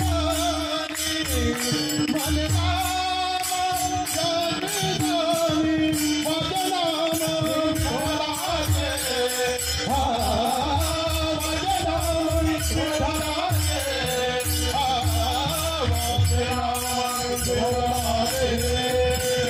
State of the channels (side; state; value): both; identical; correlation 1.00